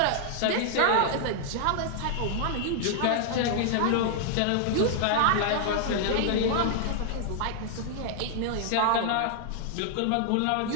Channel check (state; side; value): different; both; correlation 0.00